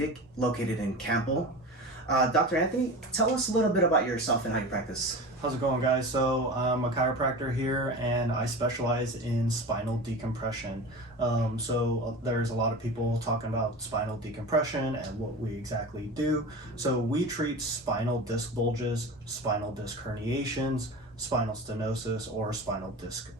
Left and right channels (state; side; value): normal; both; correlation 0.31